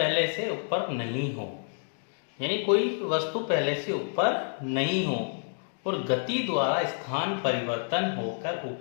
से ऊपर नहीं हो, यानी कोई वस्तु पहले से ऊपर नहीं हो और गति द्वारा स्थान परिवर्तन होकर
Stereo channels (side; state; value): right; silent; digital silence